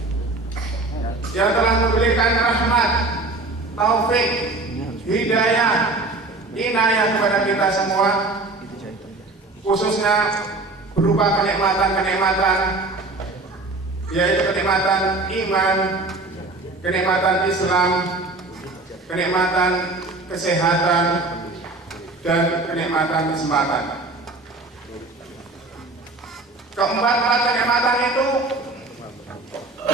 yang telah memberikan rahmat, taufik, hidayah, inayah kepada kita semua, khususnya berupa kenikmatan-kenikmatan, yaitu kenikmatan iman, kenikmatan Islam, kenikmatan kesehatan, dan kenikmatan kesempatan. Keempat-empat kenikmatan itu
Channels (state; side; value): quieter; left; 3.2 dB